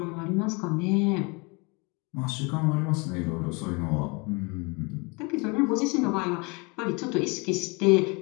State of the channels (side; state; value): right; quieter; 29.4 dB